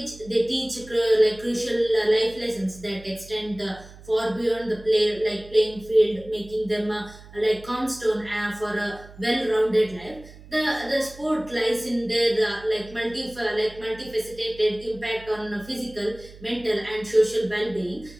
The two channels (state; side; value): noise; right; hum, 19 dB below the sound